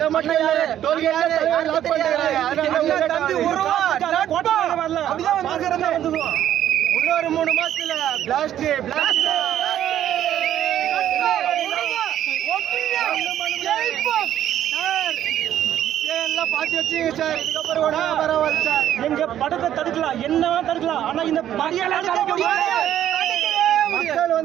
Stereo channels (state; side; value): quieter; left; 11.3 dB